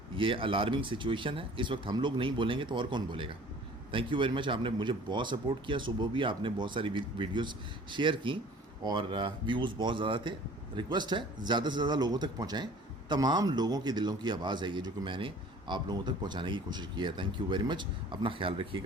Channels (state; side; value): normal; both; correlation 0.48